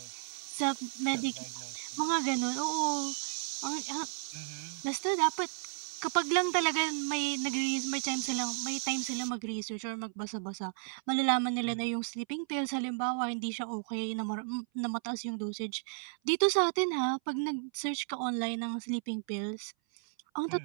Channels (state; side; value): silent; left; 55 dB below the other